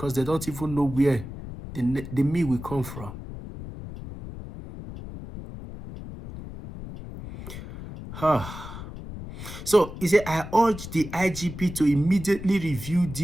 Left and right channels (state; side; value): noise; left; rumble, 11 dB below the sound